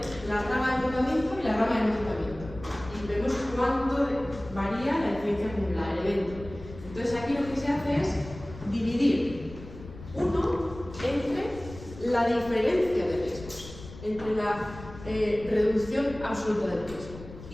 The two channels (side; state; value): left; noise; rumble, 15 dB below the sound